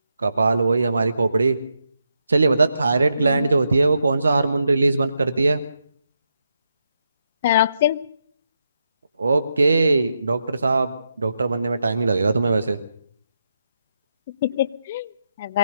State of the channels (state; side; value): inverted; both; correlation -0.83